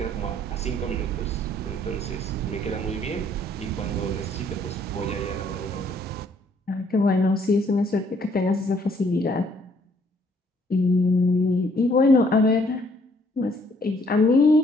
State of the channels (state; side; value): normal; both; correlation 0.65